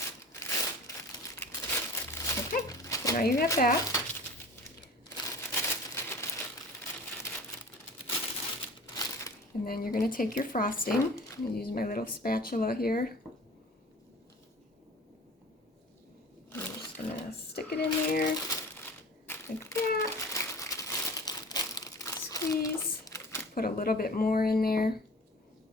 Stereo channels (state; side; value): normal; both; correlation 0.41